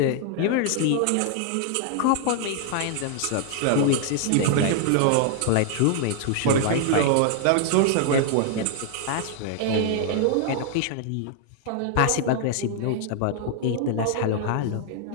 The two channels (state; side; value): different; both; correlation 0.00